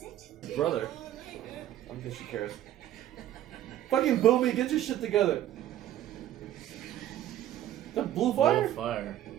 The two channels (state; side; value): quieter; left; 12.3 dB